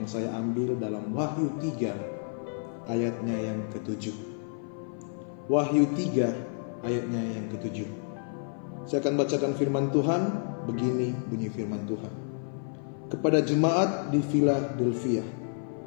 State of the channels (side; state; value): right; silent; 55 dB below the other